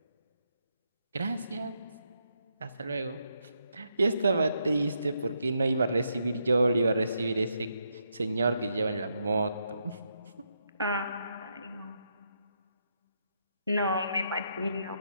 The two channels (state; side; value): inverted; both; correlation -0.80